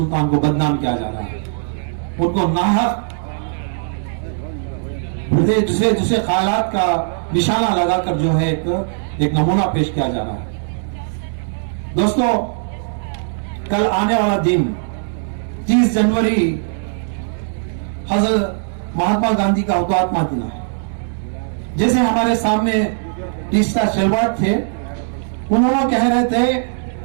को बदनाम किया जा रहा है। उनको नाहक दूसरे ख्यालात का निशाना लगाकर जो है एक नमूना पेश किया जा रहा है। दोस्तों, कल आने वाला दिन 30 जनवरी हजरत महात्मा गांधी का हुतात्मा दिन है। जैसे हमारे सामने तीसरा शेलवाड़ थे, उन्होंने कह रहे थे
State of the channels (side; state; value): left; silent; digital silence